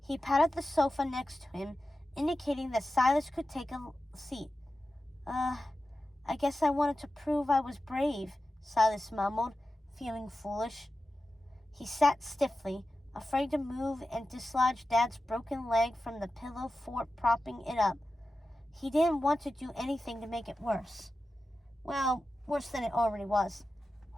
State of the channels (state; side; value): normal; both; correlation 0.93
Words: He patted the sofa next to him, indicating that Silas could take a seat. I guess I wanted to prove I was brave, Silas mumbled, feeling foolish. He sat stiffly, afraid to move, and dislodged Dad's broken leg from the pillow fort propping it up. He didn't want to do anything to make it worse. Well, worse than it already was.